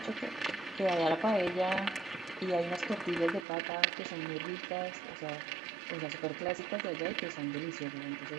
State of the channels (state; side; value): drops out; left; at 3.5 s